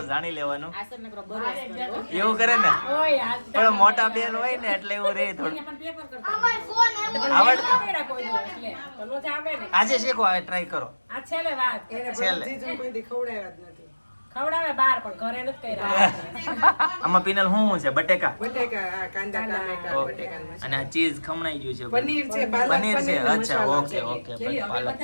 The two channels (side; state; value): both; inverted; correlation -1.00